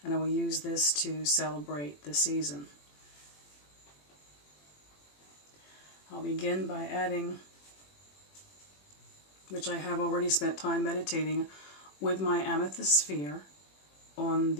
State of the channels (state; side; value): late; right; 21 ms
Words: and I will use this to celebrate the season. I'll begin by adding, which I have already spent time meditating with my amethyst sphere on